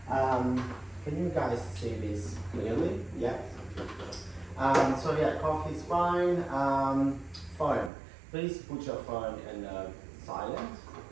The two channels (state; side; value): drops out; left; at 7.9 s